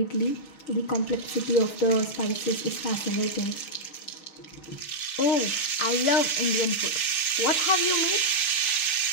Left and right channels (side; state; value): right; late; 6.0 ms